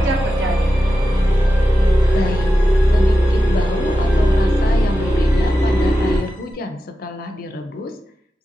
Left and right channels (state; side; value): normal; both; correlation 0.91